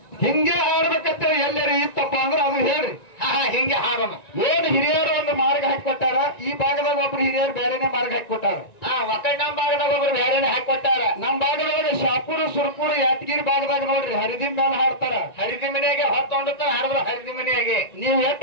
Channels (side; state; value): right; late; 1.9 ms